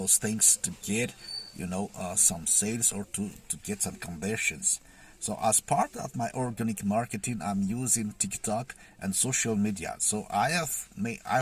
things to get, some sales or to get some conversions. So as part of my organic marketing, I'm using TikTok and social media. So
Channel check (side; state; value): both; identical; correlation 1.00